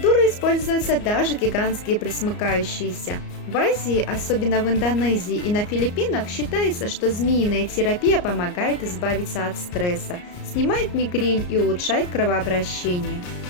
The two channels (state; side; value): late; right; 34 ms